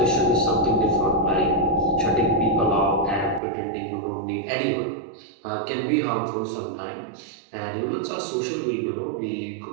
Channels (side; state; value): left; drops out; at 3.4 s